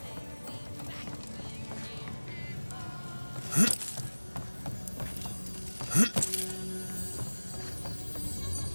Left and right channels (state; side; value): inverted; both; correlation -1.00